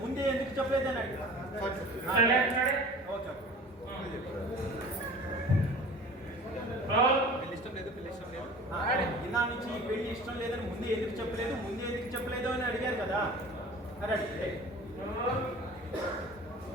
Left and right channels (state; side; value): normal; both; correlation 0.42